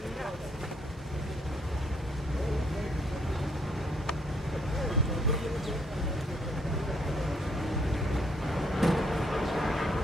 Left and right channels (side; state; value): both; normal; correlation 0.69